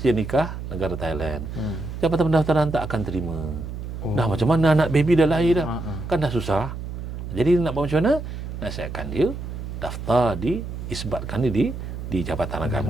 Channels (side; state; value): right; noise; hum, 7 dB below the sound